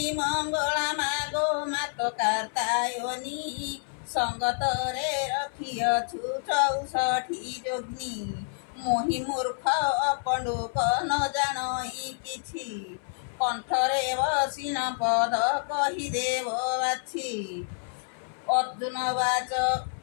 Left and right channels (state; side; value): silent; right; 58 dB below the other